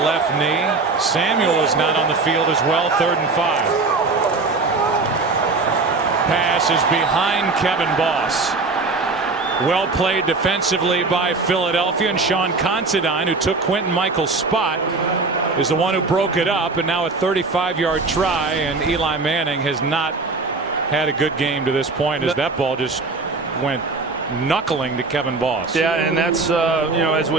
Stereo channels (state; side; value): quieter; left; 3.8 dB